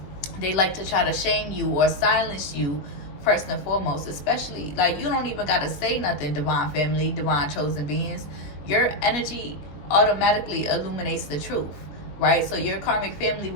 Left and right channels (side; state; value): right; late; 20 ms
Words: they like to try to shame you or silence you first and foremost. Especially, like, you don't even got to say nothing, divine family, divine chosen beings. Your energy automatically illuminates the truth, right? So your karmic family